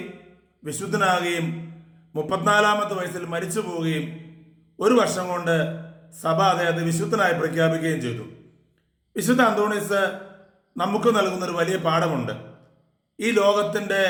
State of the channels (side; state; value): both; identical; correlation 1.00